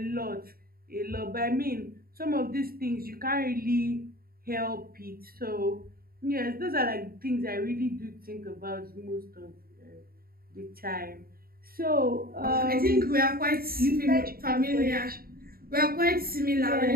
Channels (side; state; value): left; late; 0.43 ms